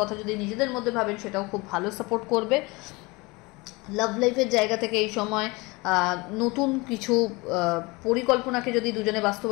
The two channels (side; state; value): right; quieter; 24.8 dB